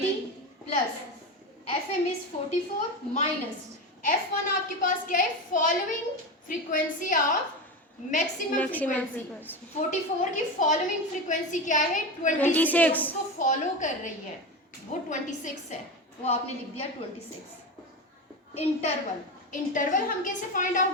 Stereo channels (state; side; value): normal; both; correlation 0.21